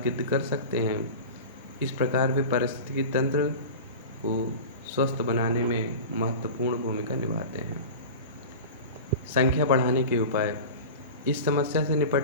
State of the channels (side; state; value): both; inverted; correlation -0.32